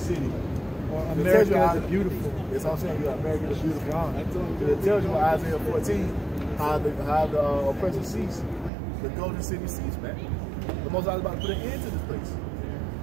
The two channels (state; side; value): drops out; left; at 8.7 s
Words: America is beautiful. That's what I'm saying. America is beautiful. It tells you in Isaiah 14 how the oppressor ceased. The golden city ceased, man. The Most High is about to put an end to this place.